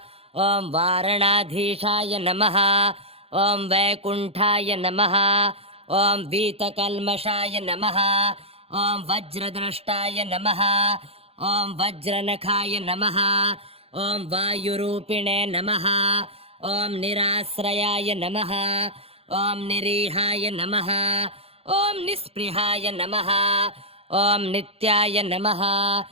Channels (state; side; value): late; left; 0.29 ms